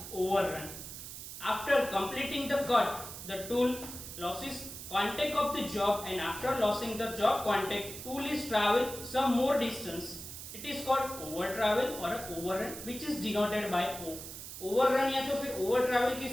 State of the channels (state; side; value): noise; right; hiss, 10 dB below the sound